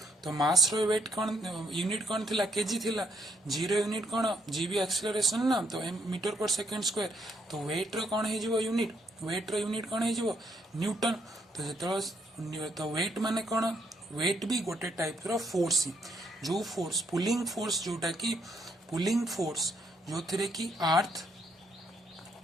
तो मास रो वेट कौन यूनिट कौन थिला केजी थिला जी रो यूनिट कौन जी भी एक्सेलरेशन ना तो मीटर पर सेकेंड स्क्वायर तो वेट रो कौन हो यूनिट वेट रो यूनिट कौन हो न्यूटन। तो जो तो वेट माने कौन वेट भी गोटे टाइप रो फोर्स ही जो फोर्स पुलिंग फोर्स जोटा कि पुलिंग फोर्स जो थे कि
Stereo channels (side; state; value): both; normal; correlation 0.73